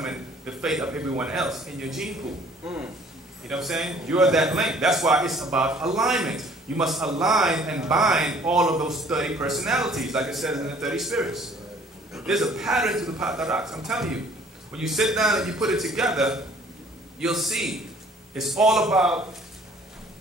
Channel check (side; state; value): both; normal; correlation 0.56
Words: the fate of everyone else in your gene pool. You know what I'm saying? You're that link. That's why it's about alignment. You must align and bind all of those 30 personalities, like it says in the 30 spirits. There's a pattern to the Pataraks. I'm telling you. When you sit down and you put it together, you'll see it's all about